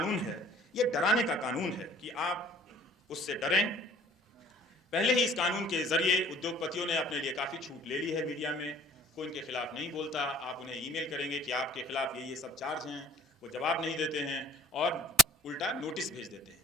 है ये डराने का कानून है कि आप उससे डरें। पहले ही इस कानून के जरिए उद्योगपतियों ने अपने लिए काफी छूट ले ली है। मीडिया में कोई इनके खिलाफ नहीं बोलता, आप उन्हें ईमेल करेंगे कि आपके खिलाफ ये सब चार्ज हैं, वो जवाब नहीं देते हैं और उल्टा नोटिस भेज देते हैं।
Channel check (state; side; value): normal; both; correlation 0.52